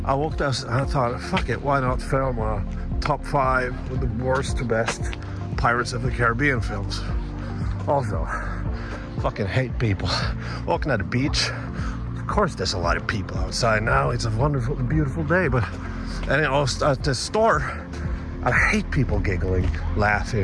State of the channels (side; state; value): both; identical; correlation 1.00